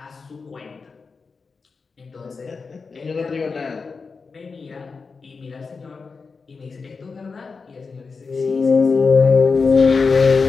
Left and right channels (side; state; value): right; quieter; 4.7 dB